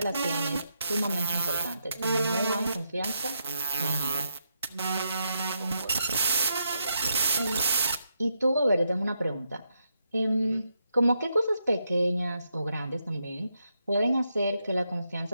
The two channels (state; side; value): inverted; both; correlation -0.81